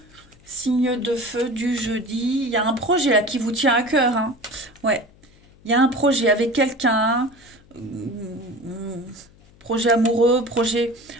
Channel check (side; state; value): left; noise; hum, 27 dB below the sound